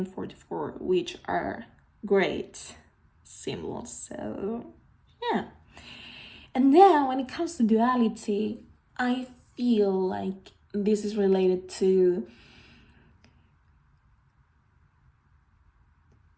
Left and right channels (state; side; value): identical; both; correlation 1.00